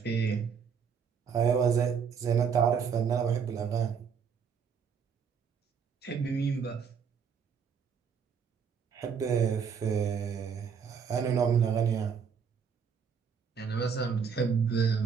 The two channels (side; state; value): left; quieter; 6.6 dB